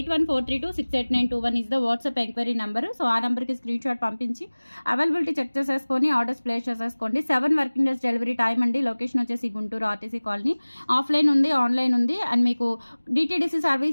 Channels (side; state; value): both; inverted; correlation -1.00